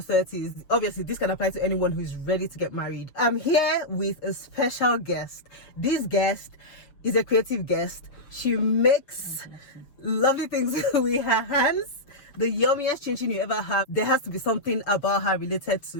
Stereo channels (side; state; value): right; late; 6.7 ms